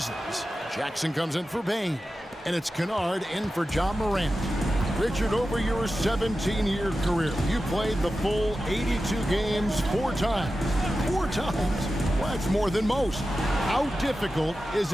Jackson comes in for Bain. And it's Kennard in for John Morant. Richard, over your 17-year career, you played the full 82 games 4 times. 4 times? Well, that's more than most. How difficult is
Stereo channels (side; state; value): both; normal; correlation 0.92